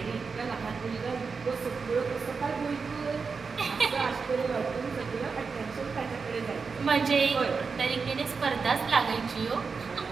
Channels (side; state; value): left; quieter; 5.0 dB